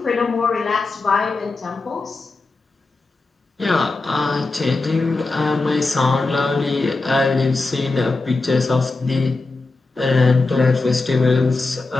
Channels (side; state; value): right; quieter; 3.5 dB